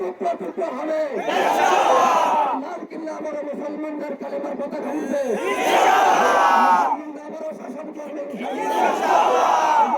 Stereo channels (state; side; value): identical; both; correlation 1.00